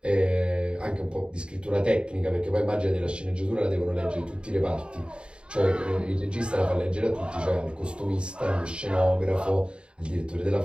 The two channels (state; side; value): late; left; 0.053 ms